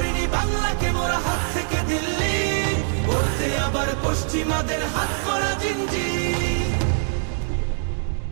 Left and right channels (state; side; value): silent; left; digital silence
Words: বাংলাকে মোরা হাত থেকে দিল্লি করতে আবার পশ্চিমাদের হাত করা জিঞ্জির।